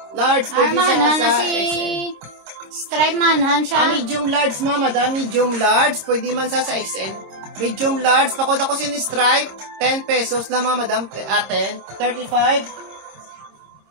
Large. Pwede Manhan na sa si XL. Stripe Manhan siya. Medium large mga madam. Medium large. Pwede man sa XL. Medium large. Pakod ako sini stripe. 10 pesos lang mga madam. 10. 35.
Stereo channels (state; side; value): late; left; 26 ms